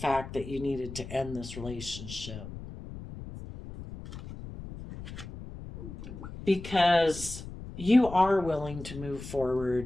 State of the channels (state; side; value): noise; left; rumble, 12 dB below the sound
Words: that you needed to end this relationship. Because you are willing to move